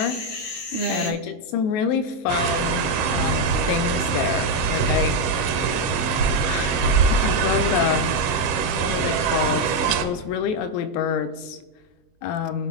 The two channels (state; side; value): late; right; 23 ms